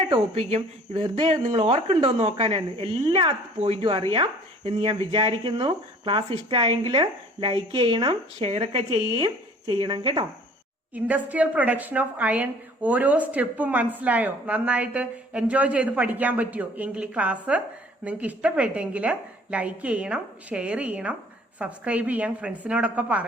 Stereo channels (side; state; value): both; normal; correlation 0.51